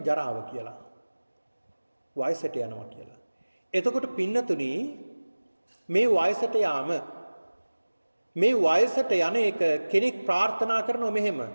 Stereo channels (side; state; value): both; inverted; correlation -1.00